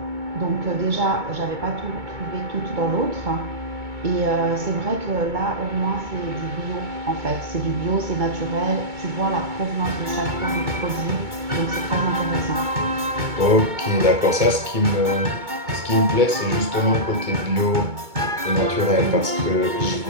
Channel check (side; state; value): left; late; 2.2 ms